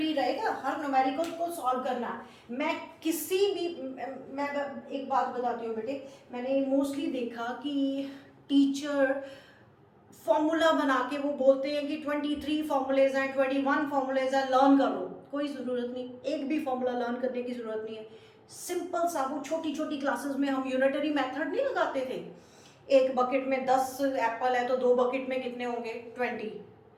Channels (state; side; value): identical; both; correlation 1.00